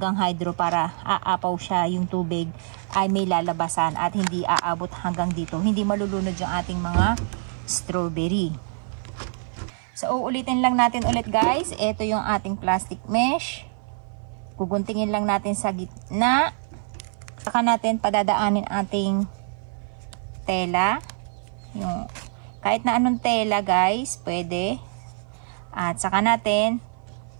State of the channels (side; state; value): left; silent; 55 dB below the other